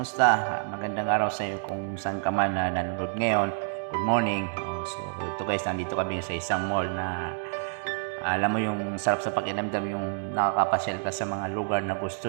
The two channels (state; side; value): silent; left; digital silence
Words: Magandang araw sa iyo kung saan ka man na nanonood ngayon. Good morning. So ito guys, nandito kami sa isang mall na alam mo yung sarap sa pakiramdam yung nakakapasyal ka sa mga lugar na